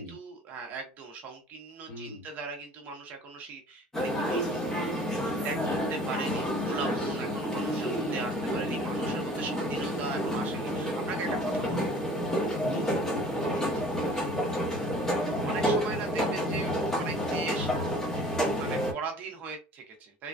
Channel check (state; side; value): normal; both; correlation 0.49